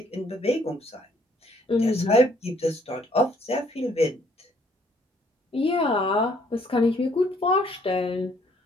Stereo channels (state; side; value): normal; both; correlation 0.64